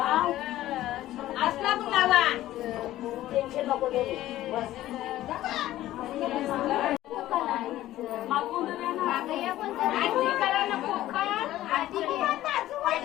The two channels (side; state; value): right; quieter; 14.6 dB